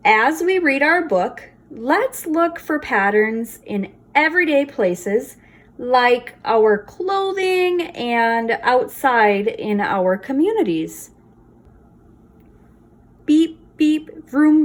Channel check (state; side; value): identical; both; correlation 1.00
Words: As we read our book, let's look for patterns in everyday places like our clothing and outside in our communities. Beep, beep, vroom,